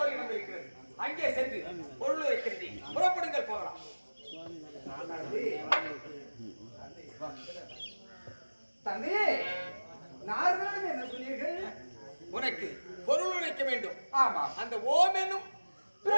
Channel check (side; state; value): both; inverted; correlation -1.00